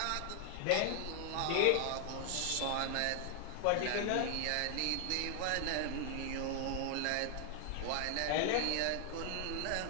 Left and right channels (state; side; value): different; both; correlation 0.00